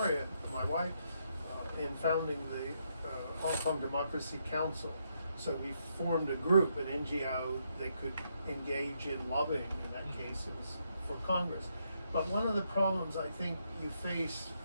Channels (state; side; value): inverted; both; correlation -0.78